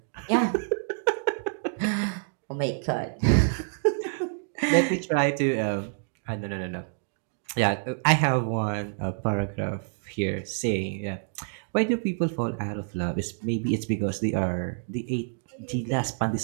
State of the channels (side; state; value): left; silent; digital silence